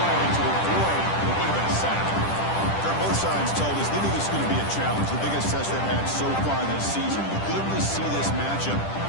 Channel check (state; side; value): late; right; 10 ms